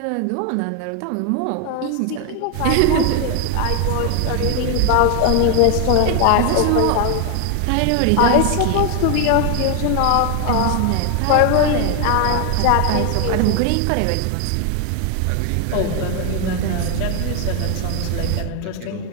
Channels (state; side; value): different; both; correlation 0.00